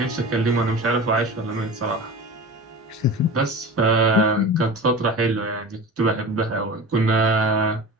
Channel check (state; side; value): normal; both; correlation 0.33